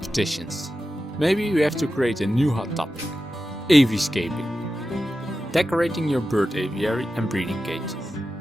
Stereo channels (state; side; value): normal; both; correlation 0.92